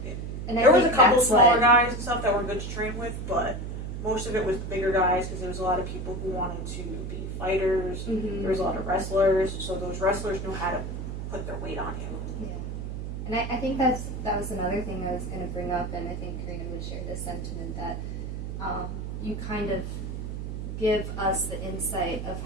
and I There was a think couple that's smaller what- guys and stuff that were good to train with, but most of it was the bigger guys because there was a lot of people who wanted to be fighters. Mhm. There was a lot of wrestlers, so those wrestlers knew how to put their weight on you. Yeah. And I think that was another thing I was going to bring up, and I think Karina would share this sentiment that you kind of give us the insight of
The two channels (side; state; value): right; noise; hum, 6 dB below the sound